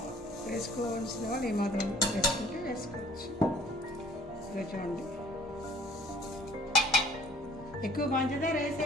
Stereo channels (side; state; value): both; normal; correlation 0.55